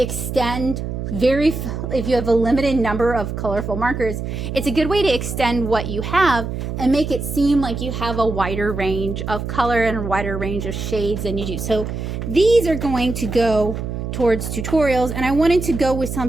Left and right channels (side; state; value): right; noise; hum, 5 dB below the sound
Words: if you have a limited number of colorful markers, it's a good way to extend what you have and make it seem like you have a wider range of color and a wider range of shades than you do. So these are going to go towards tutorials, and I wanted to go with